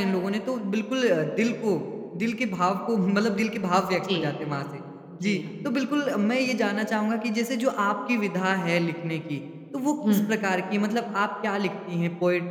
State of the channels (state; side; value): identical; both; correlation 1.00